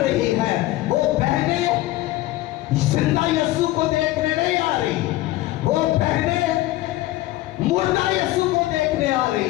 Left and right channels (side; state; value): right; quieter; 16.7 dB